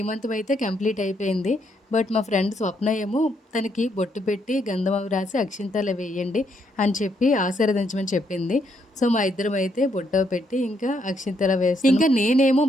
అయితే కంప్లీట్ అయిపోయింది. బట్ మా ఫ్రెండ్ స్వప్న ఏమో తనకి బొట్టు పెట్టి గంధం అవి రాసి అక్షింతలు వేయండి అని చెప్పి ఆశీర్వదించమని చెప్పింది. సో మా ఇద్దరం అయితే బొట్టో పెట్టి ఇంకా అక్షింతలు వేస్తాం. ఇంకా నేనేమో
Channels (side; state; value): both; normal; correlation 0.75